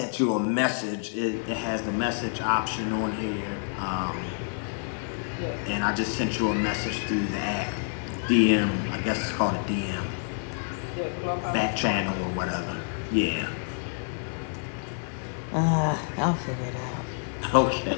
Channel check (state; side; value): silent; right; 59 dB below the other